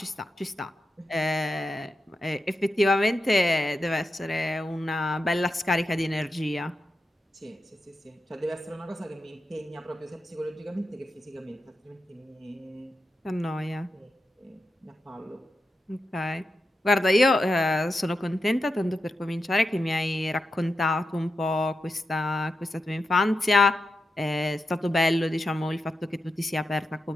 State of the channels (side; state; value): both; normal; correlation 0.89